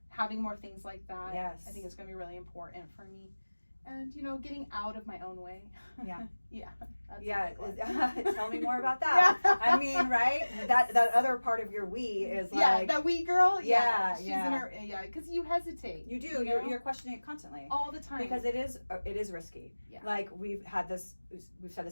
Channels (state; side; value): inverted; both; correlation -1.00